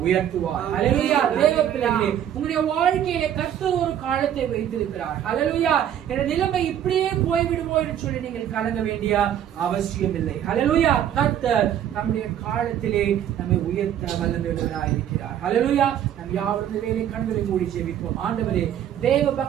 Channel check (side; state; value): left; quieter; 10.3 dB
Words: உயர்த்துவார். ஹல்லேலூயா. தேவ பிள்ளைகளே, உங்களுடைய வாழ்க்கையிலே கர்த்தர் ஒரு காலத்தை வைத்திருக்கிறார். ஹல்லேலூயா. என்ற நிலைமை இப்படியே போய்விடுமோ என்று சொல்லி நீங்கள் கலங்க வேண்டிய அவசியம் இல்லை. ஹல்லேலூயா. கர்த்தர் நம்முடைய காலத்திலே நம்மை உயர்த்த வல்லமையுள்ளவராய் இருக்கிறார். ஹல்லேலூயா. நம் யாவரும் வேலை கண்களை மூடி ஜெபிப்போம். ஆண்டவரே, தேவ